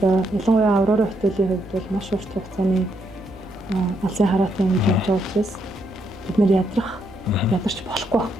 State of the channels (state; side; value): noise; right; hum, 23 dB below the sound